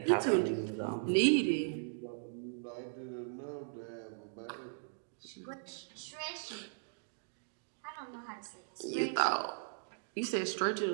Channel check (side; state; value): left; silent; digital silence